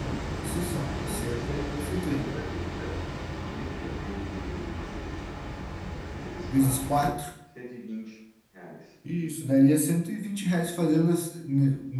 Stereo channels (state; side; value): identical; both; correlation 1.00